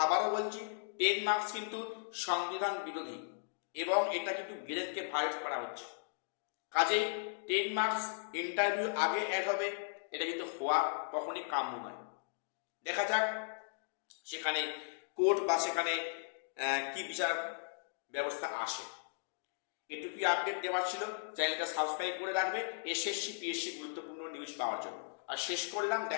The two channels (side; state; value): right; silent; digital silence